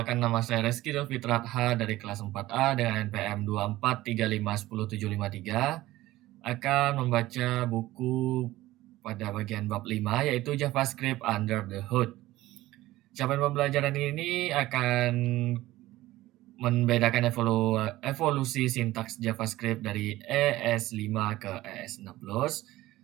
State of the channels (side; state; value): left; quieter; 16.8 dB